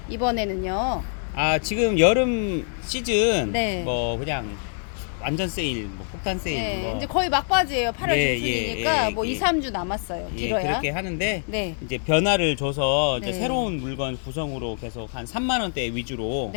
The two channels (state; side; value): silent; right; digital silence